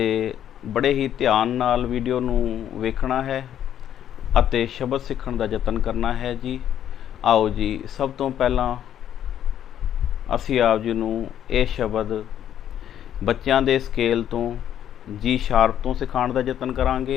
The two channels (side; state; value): right; quieter; 10.4 dB